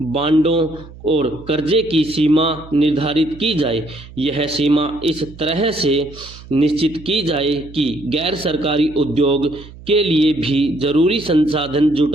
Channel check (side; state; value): right; noise; hum, 18 dB below the sound